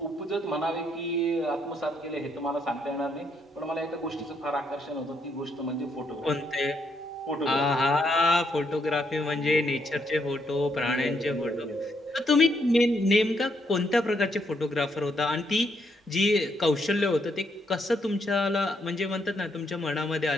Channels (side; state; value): both; normal; correlation 0.75